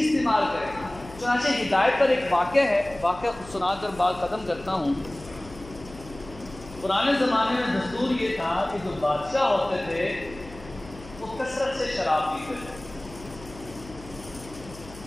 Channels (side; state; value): left; noise; hum, 17 dB below the sound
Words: استعمال کریں. چنانچہ ہدایت پر ایک واقعہ ہے، واقعہ سنا کر بات ختم کرتا ہوں. پرانے زمانے میں دستور یہ تھا کہ جو بادشاہ ہوتے تھے وہ کثرت سے شراب پیتے تھے،